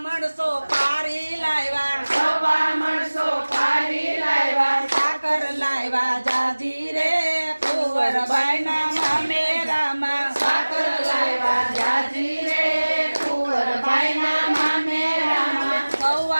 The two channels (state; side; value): inverted; both; correlation -1.00